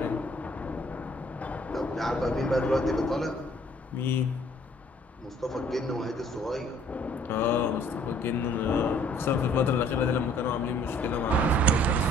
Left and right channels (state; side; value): normal; both; correlation 0.59